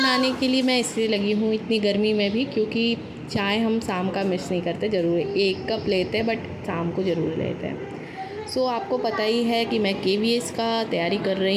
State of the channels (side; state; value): both; identical; correlation 1.00